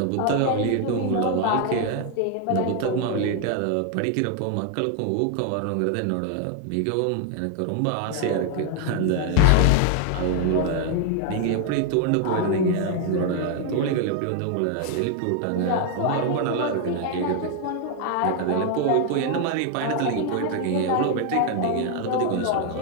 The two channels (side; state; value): both; different; correlation 0.00